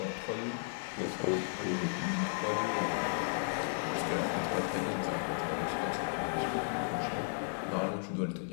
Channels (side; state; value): right; silent; 55 dB below the other